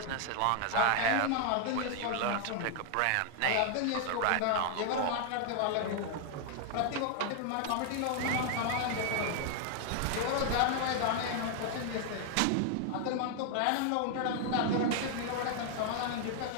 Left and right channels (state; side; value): different; both; correlation 0.00